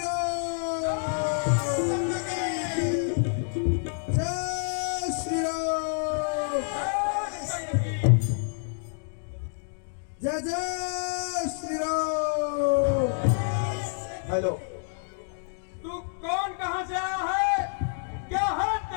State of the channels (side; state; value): right; silent; digital silence